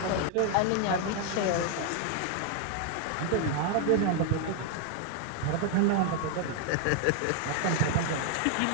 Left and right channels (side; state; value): both; different; correlation 0.00